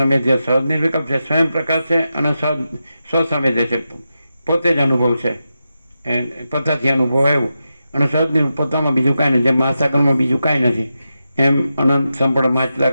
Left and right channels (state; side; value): inverted; both; correlation -0.89